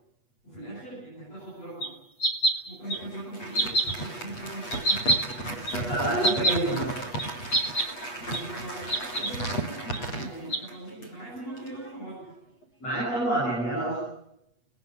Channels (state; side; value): late; right; 8.3 ms